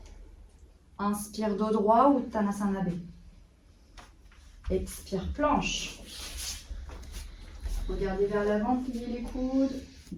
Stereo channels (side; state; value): both; identical; correlation 1.00